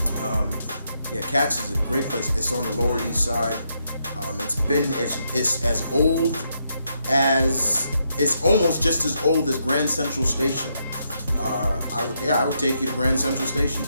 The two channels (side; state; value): both; inverted; correlation -0.79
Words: Katz is a great place. It's on the Lower East Side. It's as old as, it's almost just as old as Grand Central Station. I would take you to Grand Central Station